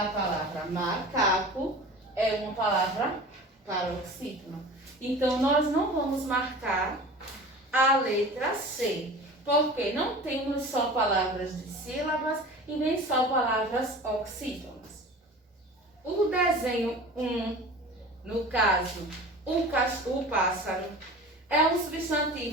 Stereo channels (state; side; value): normal; both; correlation 0.38